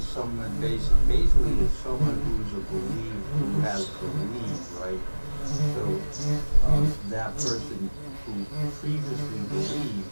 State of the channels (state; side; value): inverted; both; correlation -1.00